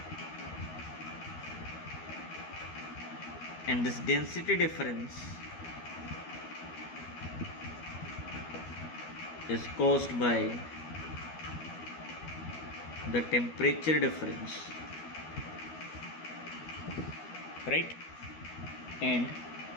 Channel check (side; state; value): right; late; 12 ms